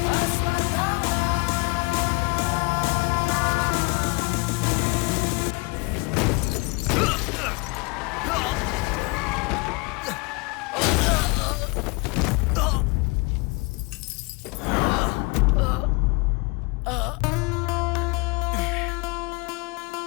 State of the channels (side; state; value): right; quieter; 27.8 dB